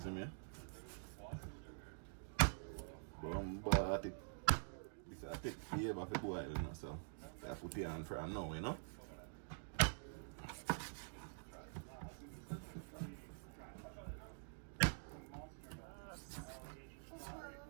me? But this will take forever for boil, you know, so I put it on for now, you know.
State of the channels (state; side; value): silent; left; digital silence